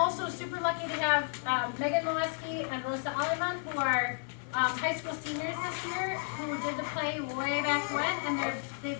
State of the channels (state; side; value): silent; right; 56 dB below the other